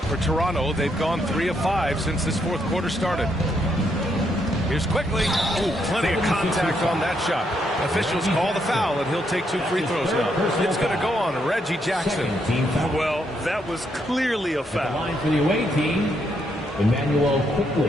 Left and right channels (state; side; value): normal; both; correlation 0.76